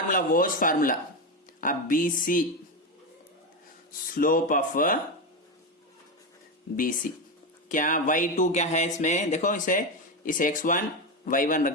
वॉज फार्मूला। अब BC, स्लोप ऑफ BC क्या, y2 क्या है इसमें देखो, इसे x1 y1 रख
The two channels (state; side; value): normal; both; correlation 0.13